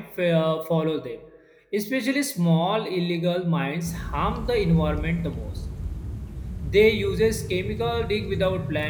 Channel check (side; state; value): both; identical; correlation 1.00